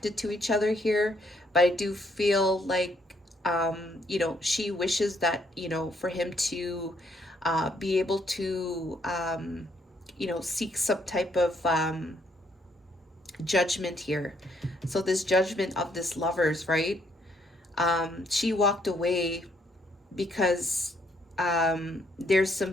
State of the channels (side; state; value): both; normal; correlation 0.70